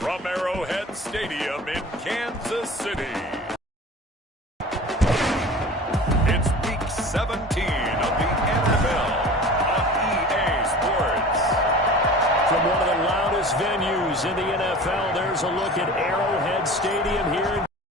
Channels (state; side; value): normal; both; correlation 0.39